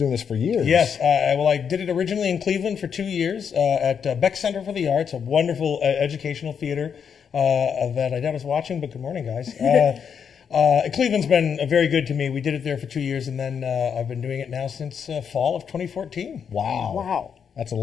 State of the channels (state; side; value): quieter; right; 7.2 dB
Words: this for years. Yes. Well, I did it originally in Cleveland for 2 years at Beck Center for the Arts, a wonderful educational theater that I was watching, but good morning, guys. Cleveland's been very good to me. We did it there for 2 years, and then I've been doing it now since fall of 2014. Wow. Wow. That's a